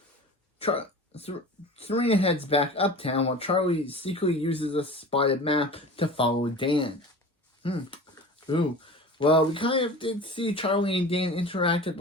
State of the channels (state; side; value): normal; both; correlation 0.37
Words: Serena heads back uptown while Charlie secretly uses a spotted map to follow Dan. Ooh. Well, we kind of did see Charlie and Dan interact at